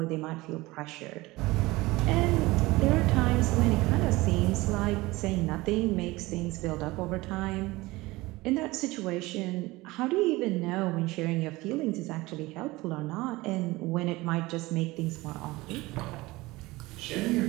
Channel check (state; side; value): quieter; left; 20.6 dB